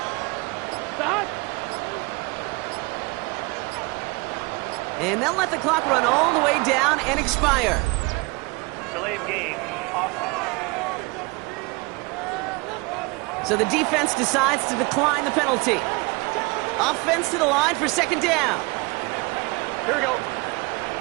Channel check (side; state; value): left; quieter; 26.6 dB